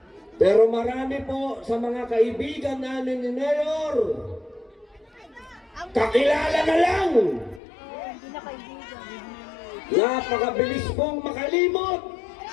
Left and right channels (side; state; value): right; drops out; at 7.6 s